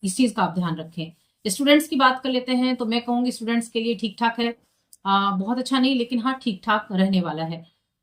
इस चीज का आप ध्यान रखें। स्टूडेंट्स की बात कर लेते हैं, तो मैं कहूंगी स्टूडेंट्स के लिए ठीक ठाक है, बहुत अच्छा नहीं, लेकिन हाँ ठीक ठाक रहने वाला है।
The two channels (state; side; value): identical; both; correlation 1.00